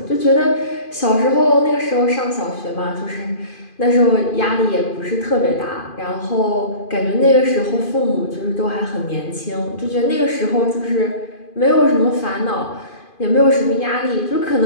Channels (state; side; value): late; right; 2.5 ms